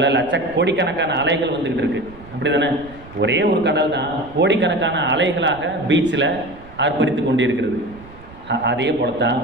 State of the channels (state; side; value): noise; right; rumble, 20 dB below the sound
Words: கோடிக்கணக்கான அலைகள் வந்துக்கிட்டு இருக்குது. அப்படி தானே? ஒரே ஒரு கடல் தான் கோடிக்கணக்கான அலைகளாக பீச்சில் ஆர்ப்பரித்து கொண்டு இருக்கிறது. அதே போல தான்